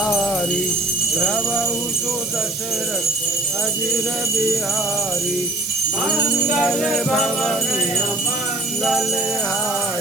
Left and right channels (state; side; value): noise; right; hiss, 6 dB below the sound